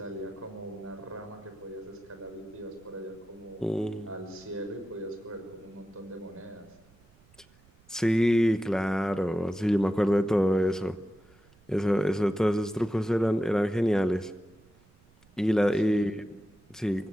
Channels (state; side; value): noise; right; rumble, 29 dB below the sound